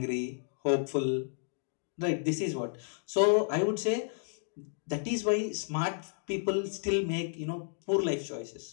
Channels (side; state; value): right; silent; digital silence